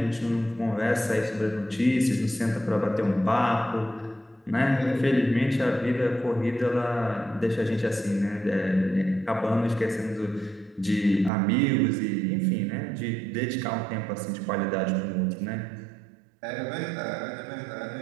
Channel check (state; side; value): drops out; left; at 11.3 s